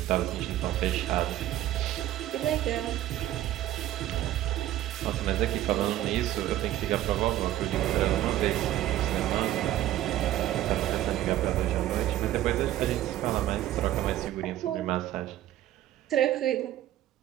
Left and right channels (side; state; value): left; quieter; 13.5 dB